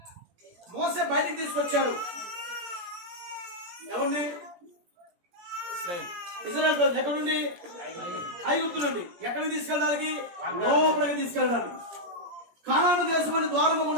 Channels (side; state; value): left; late; 17 ms